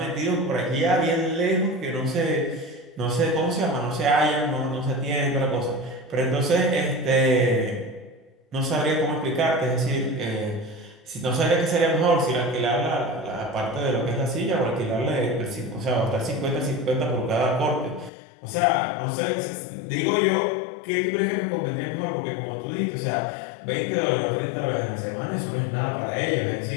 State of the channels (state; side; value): drops out; right; at 18.1 s